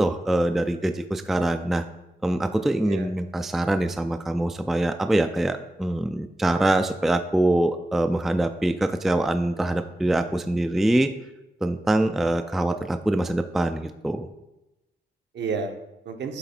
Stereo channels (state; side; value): normal; both; correlation 0.93